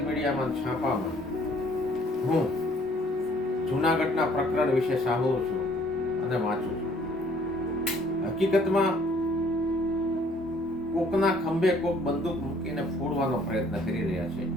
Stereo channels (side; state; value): both; normal; correlation 0.60